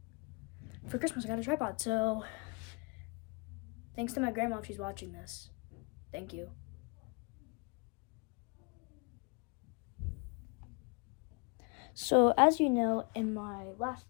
For Christmas, I got a tripod, so thanks to my grandma if she's watching this. Thank you. So, as you know, in my last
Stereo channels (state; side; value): quieter; right; 33.3 dB